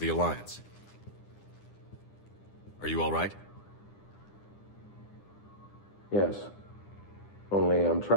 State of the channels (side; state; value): right; late; 9.9 ms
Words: Alliance. Are you all right? Yes. Only I'm